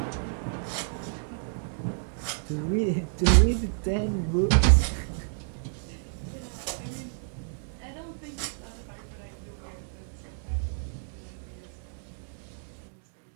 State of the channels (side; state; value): left; silent; digital silence